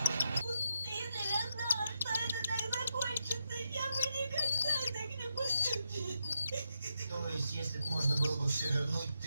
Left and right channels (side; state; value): both; inverted; correlation -0.83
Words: Если бы можно было бы все вернуть,